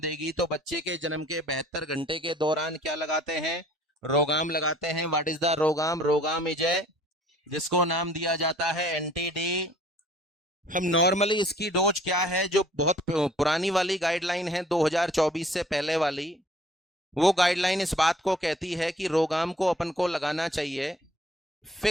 तो बच्चे के जन्म के 72 घंटे के दौरान क्या लगाते हैं? रोगाम लगाते हैं। What is the RhoGAM? RhoGAM is a, जिसको नाम दिया जाता है एंटी डी। हम नॉर्मली इसकी डोज क्या है, जो बहुत पुरानी वाली गाइडलाइन है 2024 से पहले वाली, वो गाइडलाइन इस बात को कहती है कि रोगाम को अपन को लगाना चाहिए,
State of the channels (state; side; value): normal; both; correlation 0.55